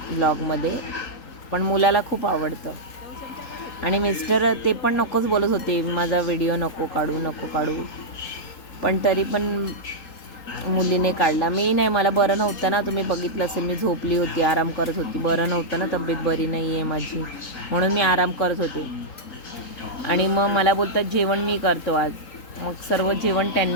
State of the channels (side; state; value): right; late; 3.8 ms